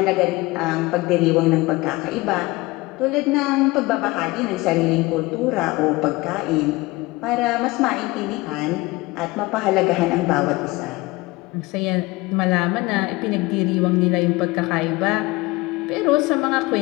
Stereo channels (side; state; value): right; quieter; 21.7 dB